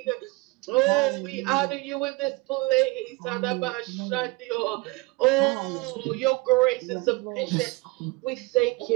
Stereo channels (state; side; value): quieter; left; 23.4 dB